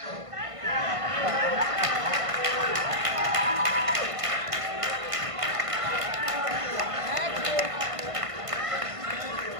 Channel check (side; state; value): left; late; 1.5 ms